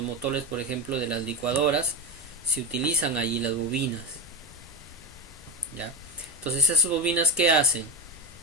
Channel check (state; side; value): normal; both; correlation 0.17